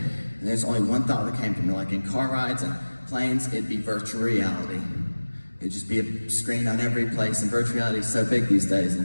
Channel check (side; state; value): both; inverted; correlation -1.00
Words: there's only one thought that came to me. Like in car rides and planes, it'd be virtual reality. It'd just be a screen on every place, and virtual reality is so big these days.